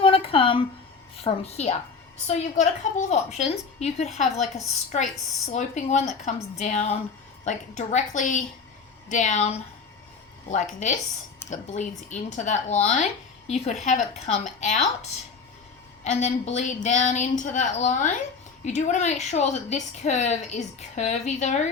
to come from here. So you've got a couple of options. You could have like a straight sloping one that comes down, like directly down like this, that bleeds into that line. You could have it come out and then bleed down into that line. You do want to make sure that this curve is curvy though.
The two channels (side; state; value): right; quieter; 5.1 dB